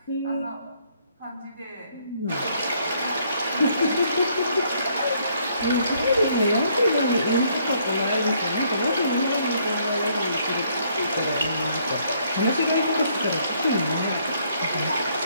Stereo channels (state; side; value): inverted; both; correlation -0.68